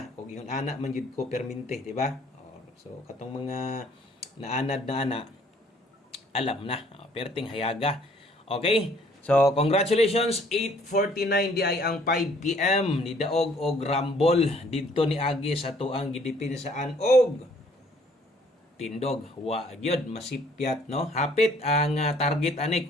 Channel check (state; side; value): normal; both; correlation 0.60